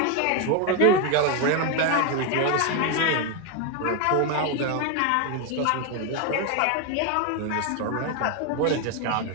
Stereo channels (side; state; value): both; different; correlation 0.01